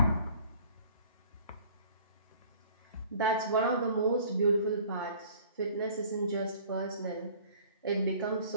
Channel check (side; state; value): both; inverted; correlation -0.51